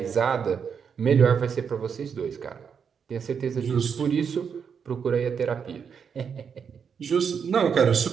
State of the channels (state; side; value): quieter; left; 6.8 dB